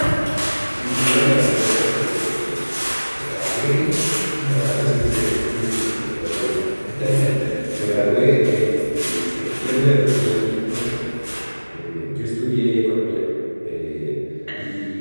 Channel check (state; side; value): inverted; both; correlation -1.00